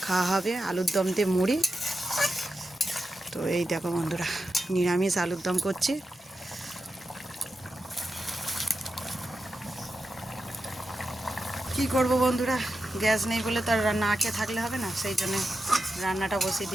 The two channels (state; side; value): normal; both; correlation 0.90